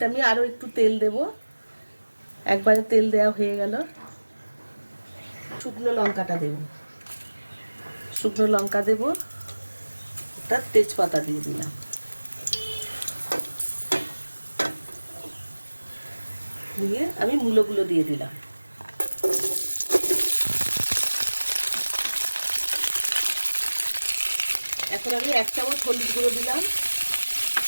আমি আরও একটু তেল দেব। একবারে তেল দেওয়া হয়ে গেল। শুকনো লঙ্কাটা দেব, শুকনো লঙ্কা দেব, একটা তেজপাতা দিয়ে দিলাম। দিয়ে আমি মূলোগুলো দিয়ে দিলাম। এখন আমি 1 চামচ হলুদ গুঁড়ো দিলাম।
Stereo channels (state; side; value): inverted; both; correlation -1.00